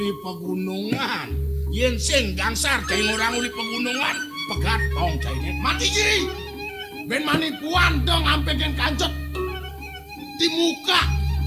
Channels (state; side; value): identical; both; correlation 1.00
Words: pegunungan. Yen sing gangsar cai orang uli pegunungan, pegat tong cai net mati ji. Ben manipuan dong ampe gen kancut. Di muka